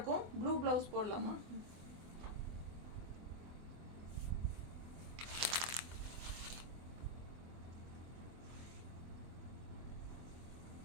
ப்ளூ ப்ளவுஸ் போடலாமா?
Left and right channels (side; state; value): left; late; 24 ms